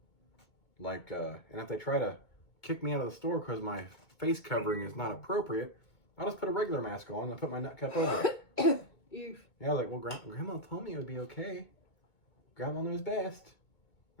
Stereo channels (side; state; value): right; late; 2.2 ms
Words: Like, and if they try to kick me out of the store because my face covering is not appropriate, I'll just put a regular mask on and put my nut cup over it. Oof. Yeah, I was like, well, Grandma told me it would be okay. Grandma knows best.